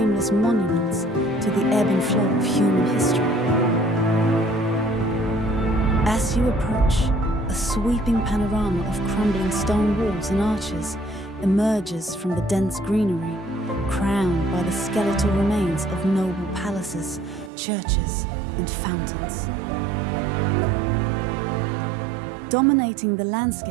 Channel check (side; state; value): left; drops out; at 17.5 s